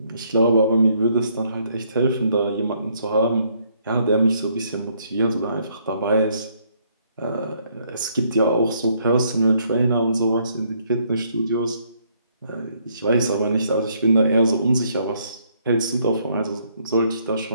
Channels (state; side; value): inverted; both; correlation -0.69